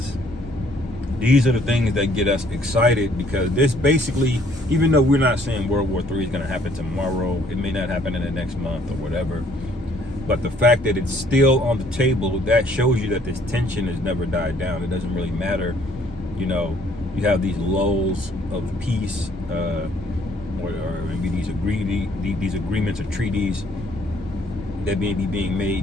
these are the things that get us excited, because this basically, even though we're not saying World War III is going to happen tomorrow, it may not happen in the next month or whatever, but the fact that it's still on the table, that shows you that this tension has never died down. It doesn't really matter, you have these lulls of peace, or maybe these agreements or treaties that may be being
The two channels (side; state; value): both; normal; correlation 0.62